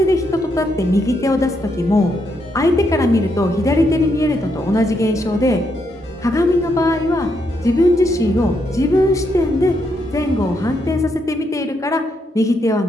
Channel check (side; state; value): both; normal; correlation 0.78